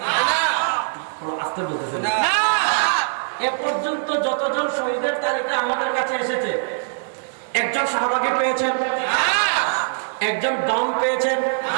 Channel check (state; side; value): silent; left; digital silence